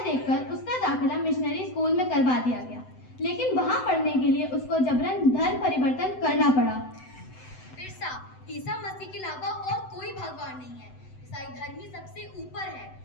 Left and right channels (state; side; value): late; right; 7.9 ms